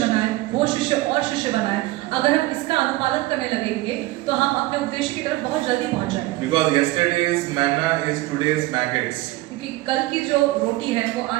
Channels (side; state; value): left; quieter; 18.8 dB